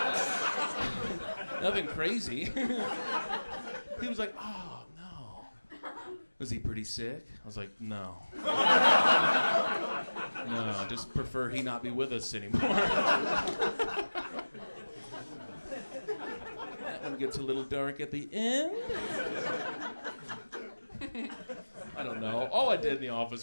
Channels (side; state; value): both; inverted; correlation -1.00